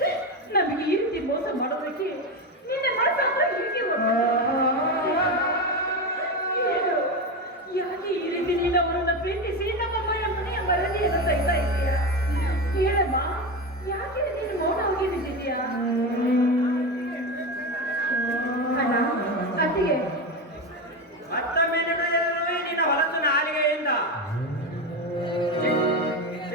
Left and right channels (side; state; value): both; normal; correlation 0.17